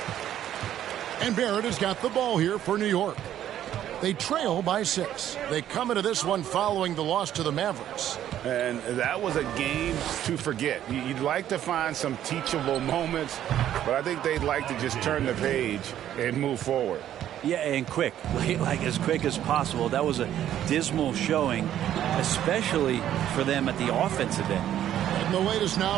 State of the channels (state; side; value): quieter; left; 11.4 dB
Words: And Barrett has got the ball here for New York. They trail by 6. They come into this one following the loss to the Mavericks. And that was a game to forget. You'd like to find some teachable moments, but I think they'd like to just turn the page and move forward. Yeah, and quick, like as quick as possible. That was a dismal showing, especially for them at the offensive end. And the latest